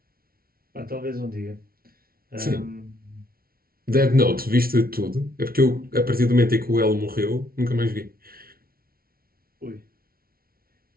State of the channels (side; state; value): left; late; 0.43 ms